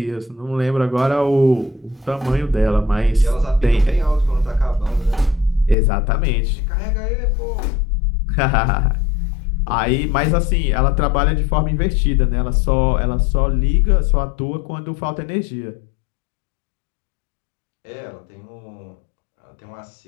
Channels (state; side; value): drops out; right; at 5.8 s